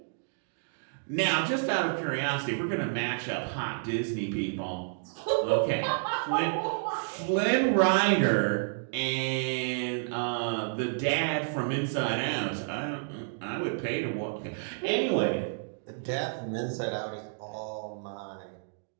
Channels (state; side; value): silent; left; digital silence